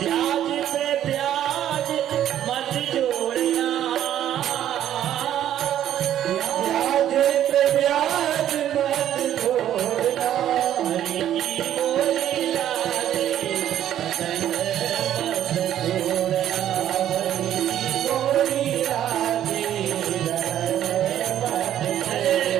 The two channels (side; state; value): left; quieter; 11.3 dB